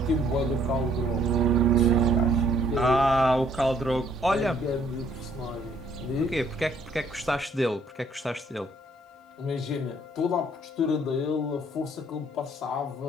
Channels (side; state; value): both; normal; correlation 0.63